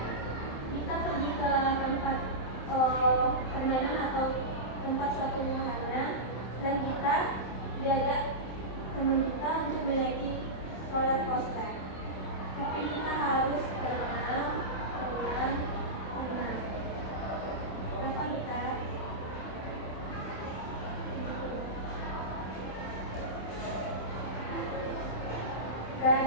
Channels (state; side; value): late; right; 27 ms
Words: kita pergi ke tempat permainan atau tempat suatu wahana dan kita diajak teman kita untuk menaiki roller coaster. Tapi kita harus tenang. Kenapa kita? Dan